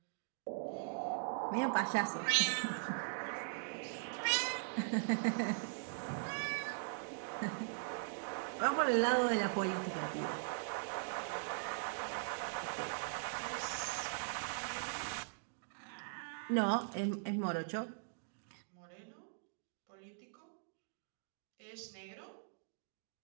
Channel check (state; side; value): silent; left; digital silence